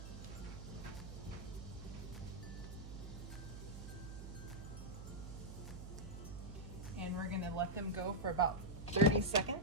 And we're gonna let them go for about 30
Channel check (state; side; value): noise; right; hum, 9 dB below the sound